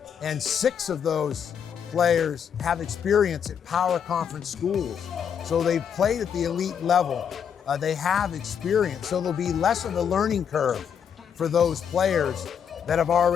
and 6 of those players have experience at power conference schools. So they've played at the elite level. They have experience, so there'll be less of a learning curve for those players that have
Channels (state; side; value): quieter; right; 7.8 dB